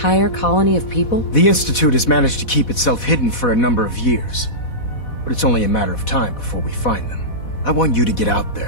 colony of people? The Institute has managed to keep itself hidden for a number of years, but it's only a matter of time before we find them. I want you to get out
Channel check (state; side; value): late; right; 4.1 ms